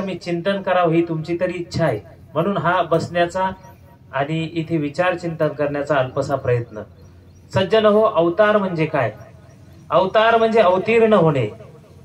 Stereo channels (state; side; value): identical; both; correlation 1.00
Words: चिंतन करावं ही तुमची तरी इच्छा आहे. म्हणून हा बसण्याचा आणि इथे विचार चिंतन करण्याचा अल्पसा प्रयत्न. सज्जन हो, अवतार म्हणजे काय? अवतार म्हणजे अवतीर्ण होणे.